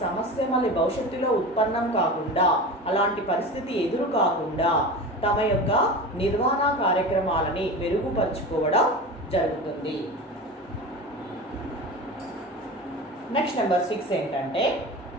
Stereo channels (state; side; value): normal; both; correlation 0.30